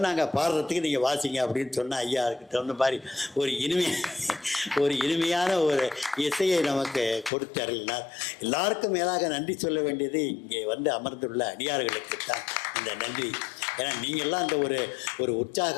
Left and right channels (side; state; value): right; drops out; at 7.3 s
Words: நாங்கள் பாடுறதுக்கு நீங்கள் வாசிங்க அப்படின்னு சொன்னால் ஐயா அதுக்கு தகுந்த மாதிரி ஒரு இனிமையான ஒரு இசையை நமக்கு கொடுத்து அருளினார். எல்லாருக்கும் மேலாக நன்றி சொல்ல வேண்டியது இங்கே அமர்ந்துள்ள அடியார்களுக்கு தான் இந்த நன்றி. ஏன்னா நீங்கள்லாம் அந்த ஒரு